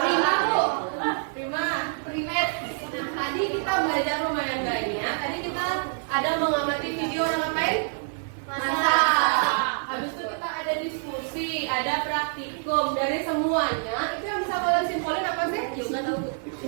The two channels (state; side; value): silent; left; 61 dB below the other